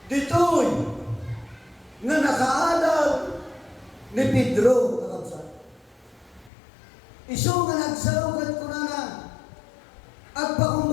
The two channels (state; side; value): drops out; right; at 6.5 s